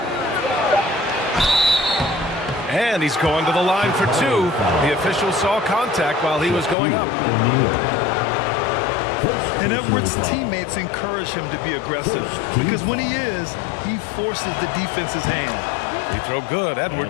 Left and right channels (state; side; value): drops out; right; at 6.8 s